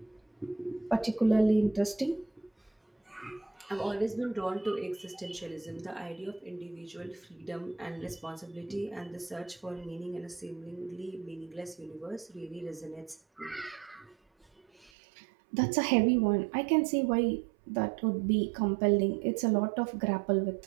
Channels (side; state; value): left; drops out; at 14.9 s